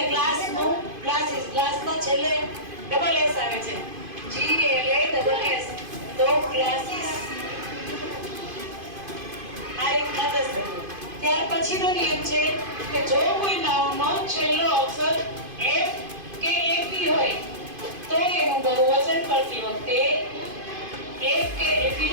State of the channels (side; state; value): left; late; 2.5 ms